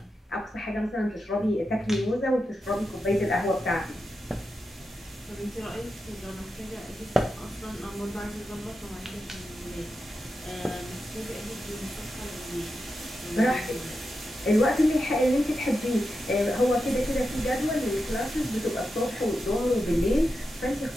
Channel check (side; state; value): both; normal; correlation 0.89